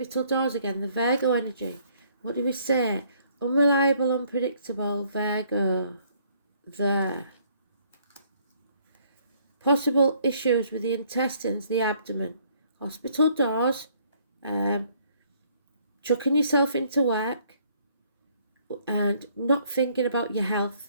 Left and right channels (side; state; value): both; inverted; correlation -0.64